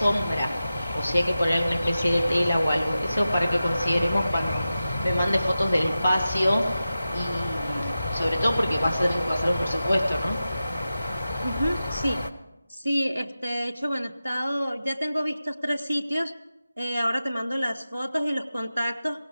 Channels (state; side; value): inverted; both; correlation -0.93